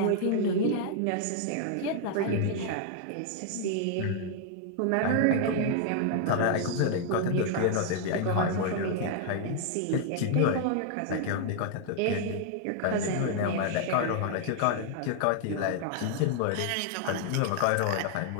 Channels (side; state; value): both; different; correlation 0.00